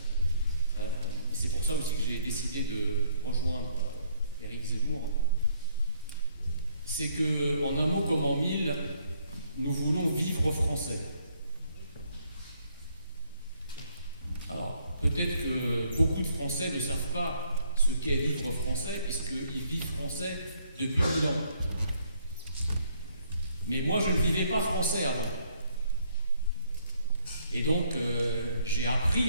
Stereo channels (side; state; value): both; inverted; correlation -0.67